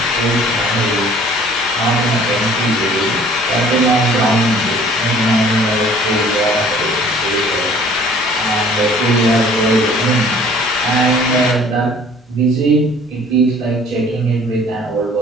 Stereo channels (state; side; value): normal; both; correlation 0.53